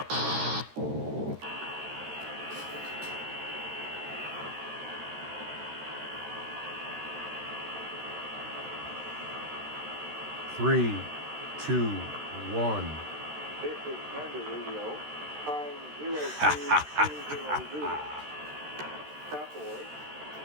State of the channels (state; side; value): late; left; 13 ms